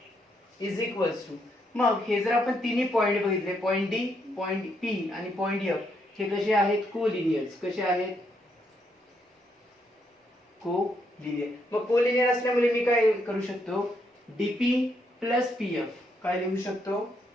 इज इक्वल्स टू. मग हे जर आपण तिन्ही पॉइंट बघितले पॉइंट D पॉइंट P आणि पॉइंट F हे कसे आहेत कोलिनियर्स. कसे आहेत कोलिनियर. मग कोलिनियर असल्यामुळे मी काय करू शकतो DP प्लस PF काय लिहू शकतो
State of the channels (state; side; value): normal; both; correlation 0.76